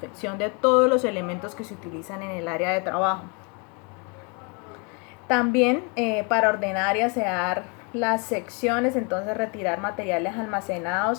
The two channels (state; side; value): quieter; right; 33.6 dB